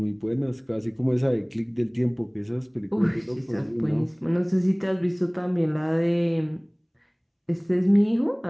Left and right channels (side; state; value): both; identical; correlation 1.00